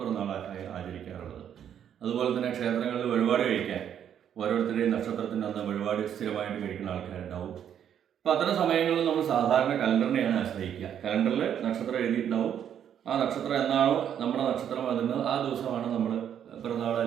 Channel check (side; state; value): left; quieter; 9.3 dB